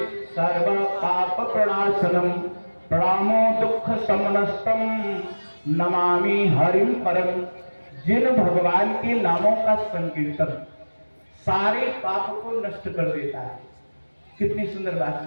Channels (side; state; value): both; inverted; correlation -1.00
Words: सर्व पाप प्रणाशनम प्रणामो दुख शमनस्तम नमामि हरिम परम। जिन भगवान के नामों का संकीर्तन सारे पाप को नष्ट कर देता है। कितनी सुंदर बात